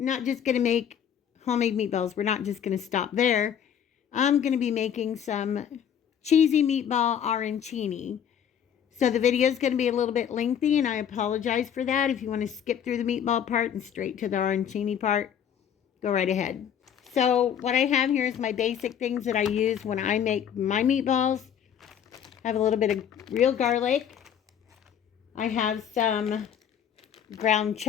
not just going to make homemade meatballs. We're not just going to stop there. I'm going to be making some cheesy meatball arancini. So the video is going to be a little bit lengthy, and I apologize for that. If you want to skip through the meatball part and straight to the arancini part, go right ahead. So what I have here is my basic things that I use when I make my meatballs. I have a little bit of real garlic. I have some ground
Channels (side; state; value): right; quieter; 8.8 dB